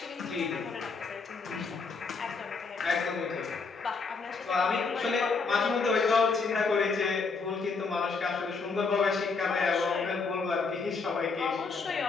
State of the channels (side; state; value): right; quieter; 4.6 dB